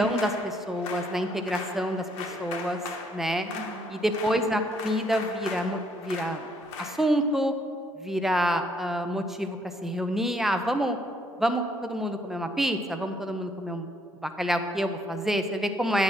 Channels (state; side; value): normal; both; correlation 0.69